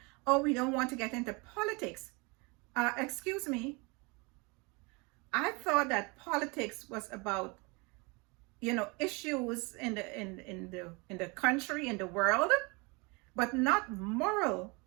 oh, we don't want to get into politics. Excuse me. I thought that politics was about, issues in the country, in the world, but not moral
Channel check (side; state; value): left; quieter; 28.6 dB